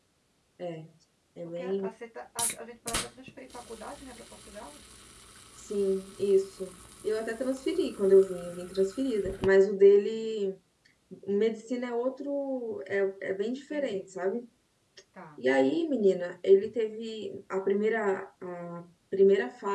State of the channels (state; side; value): identical; both; correlation 1.00